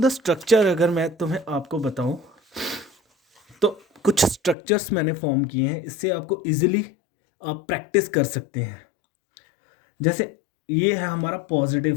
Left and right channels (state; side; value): drops out; right; at 4.5 s